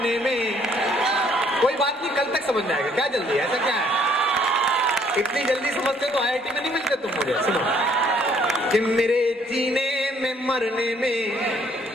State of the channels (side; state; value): both; normal; correlation 0.63